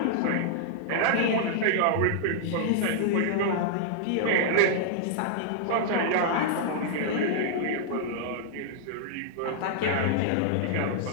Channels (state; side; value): different; both; correlation -0.01